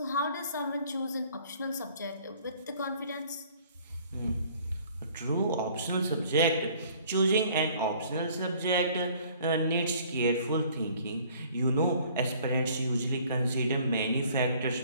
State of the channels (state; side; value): inverted; both; correlation -0.55